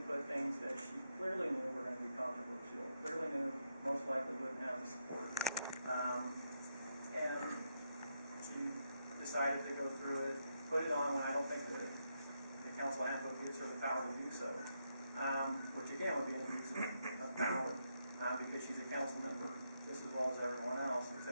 put things that she clearly knew were going to be controversial, clearly knew most likely wouldn't have the support. And she decided to go through it, put it on when I don't think that the council handbook gives her the power to do so, which again would be an abuse of power, because she's a council member just as well as everyone else,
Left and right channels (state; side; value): inverted; both; correlation -0.81